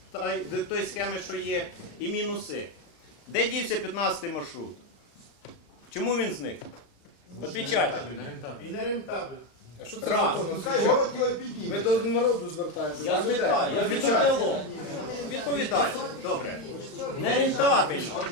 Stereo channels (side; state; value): right; late; 35 ms